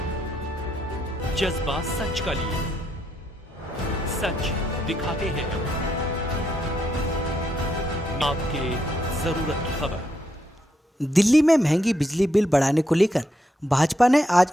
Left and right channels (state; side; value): normal; both; correlation 0.78